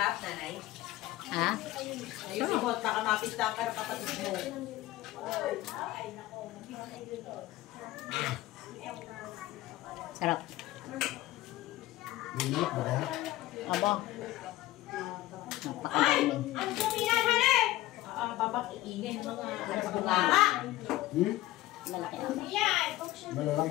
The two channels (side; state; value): right; quieter; 16.6 dB